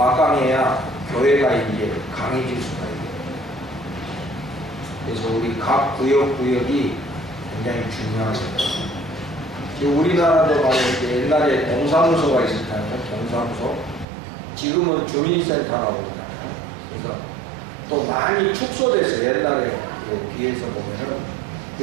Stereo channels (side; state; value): left; drops out; at 14.1 s